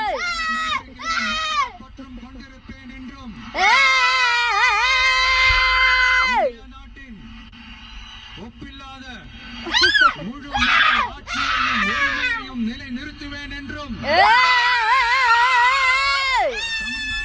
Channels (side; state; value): both; identical; correlation 1.00